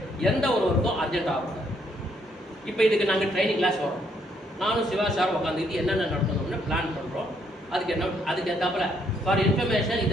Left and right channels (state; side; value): normal; both; correlation 0.71